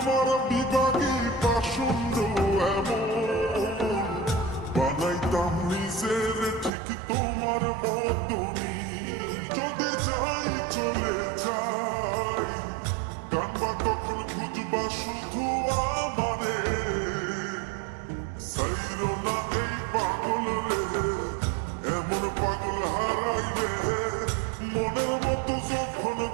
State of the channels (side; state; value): left; drops out; at 6.7 s